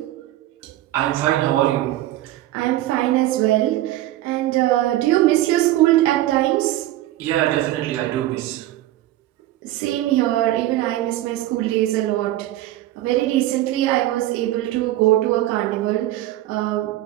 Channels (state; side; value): quieter; left; 15.0 dB